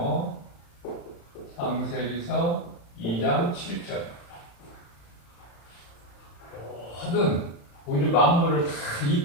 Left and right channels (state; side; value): late; right; 35 ms